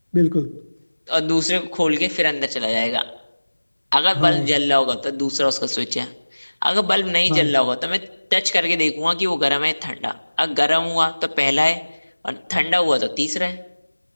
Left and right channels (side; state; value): both; inverted; correlation -1.00